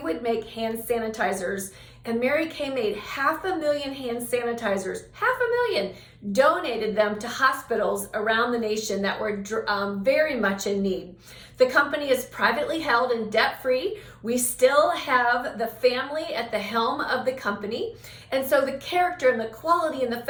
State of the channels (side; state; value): both; identical; correlation 1.00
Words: make hand sanitizers. And Mary Kay made 500,000 hand sanitizers, 500,000, donated them to hospitals around the nation that were very much in need. The company is privately held and debt-free. We still have the family at the helm of the company. And so the character and the quality and the